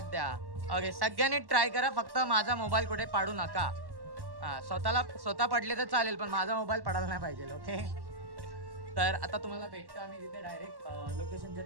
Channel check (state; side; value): late; left; 1.1 ms